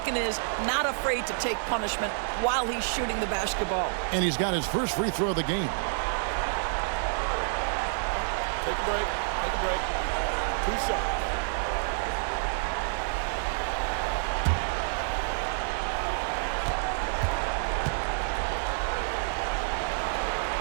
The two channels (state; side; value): silent; left; digital silence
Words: is not afraid to take punishment while he's shooting the basketball. And he's got his first free throw of the game. Take a break. Take a break. 2 shots.